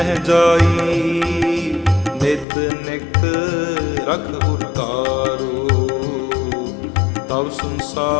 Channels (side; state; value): right; drops out; at 2.5 s